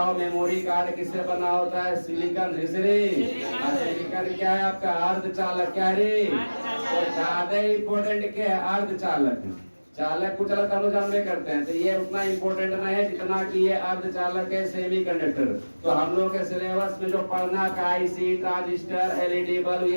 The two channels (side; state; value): both; inverted; correlation -1.00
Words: मेमोरी कार्ड किससे बना होता है? सिलिकॉन से रे। सिलिकॉन क्या है आपका? अर्धचालक। क्या रे? तो ज्यादा इंपॉर्टेंट क्या है? अर्धचालक। चालक को चलत हम लोग जानबे करते हैं, तो ये उतना इम्पोर्टेंट नहीं है जितना कि ये अर्धचालक है, सेमीकंडक्टर। तो हम लोग के सिलेबस में जो पढ़ना का आईसी, ट्रांजिस्टर, एलईडी बल्ब,